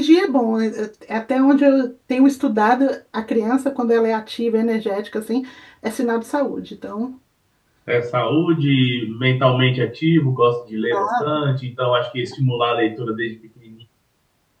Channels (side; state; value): both; identical; correlation 1.00